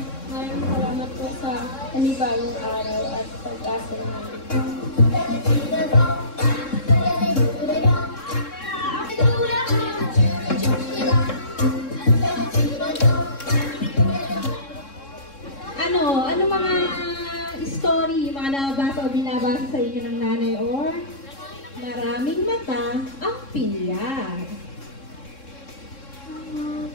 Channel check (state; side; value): late; right; 3.7 ms